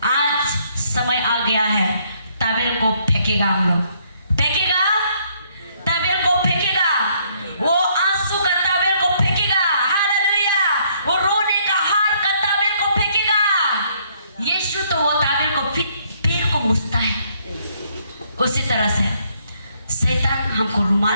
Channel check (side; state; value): both; inverted; correlation -0.68